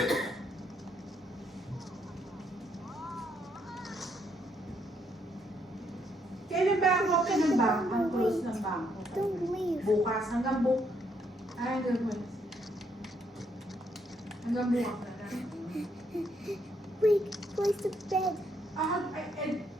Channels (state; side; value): normal; both; correlation 0.73